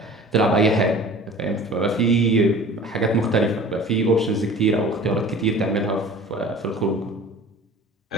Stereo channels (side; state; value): both; normal; correlation 0.43